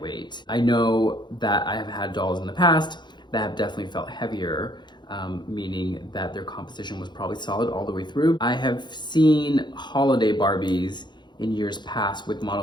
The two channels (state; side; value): late; right; 0.21 ms